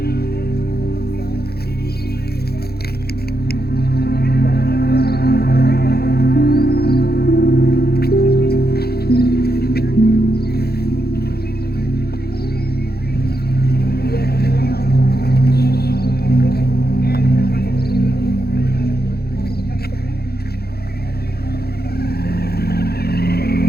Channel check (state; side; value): late; right; 0.46 ms